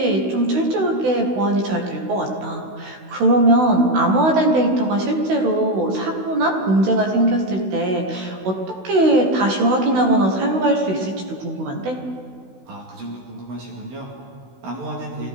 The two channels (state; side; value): late; left; 16 ms